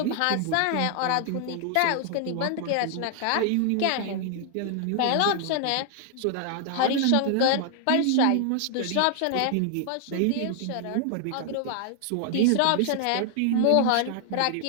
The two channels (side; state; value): both; different; correlation 0.00